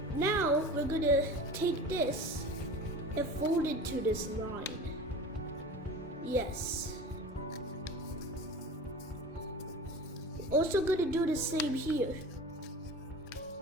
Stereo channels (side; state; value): both; normal; correlation 0.36